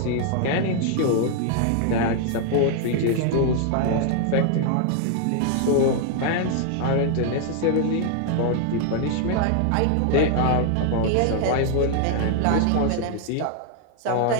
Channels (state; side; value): different; both; correlation 0.00